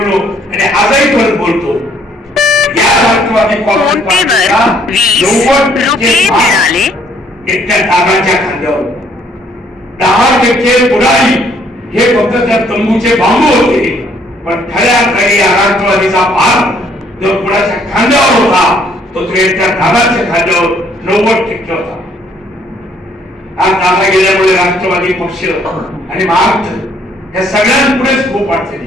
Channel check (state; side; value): normal; both; correlation 0.65